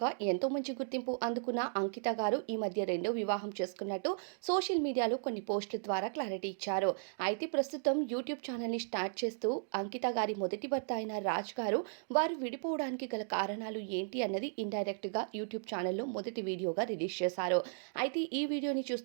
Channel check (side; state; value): left; silent; digital silence